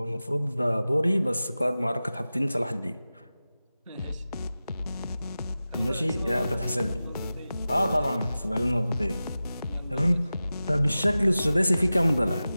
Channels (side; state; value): both; inverted; correlation -0.95